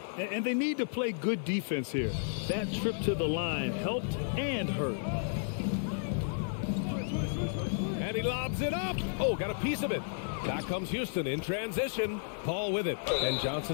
And they need to play good defense here. That trip to the line helped and hurt. And he lobs it up. Oh, got a piece of it. Back comes Houston in transition. Paul with it. And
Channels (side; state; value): right; silent; digital silence